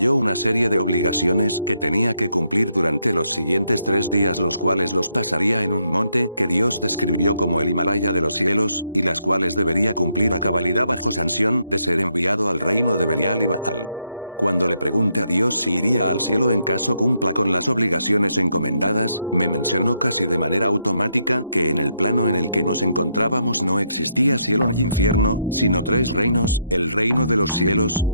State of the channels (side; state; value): both; inverted; correlation -0.77